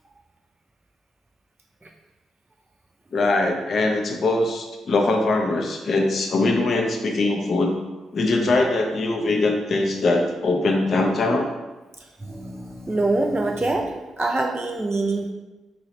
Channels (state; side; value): normal; both; correlation 0.84